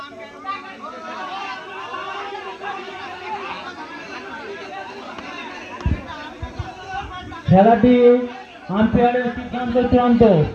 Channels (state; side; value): identical; both; correlation 1.00